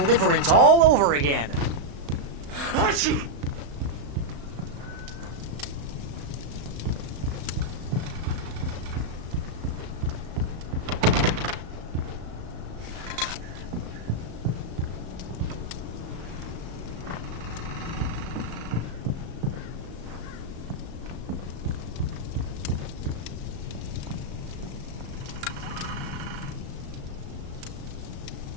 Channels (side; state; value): left; late; 35 ms